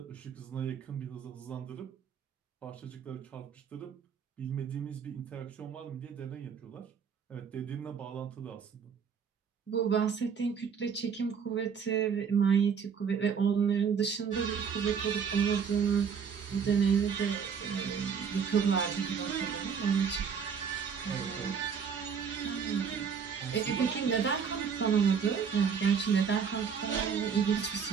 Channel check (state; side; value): quieter; left; 6.8 dB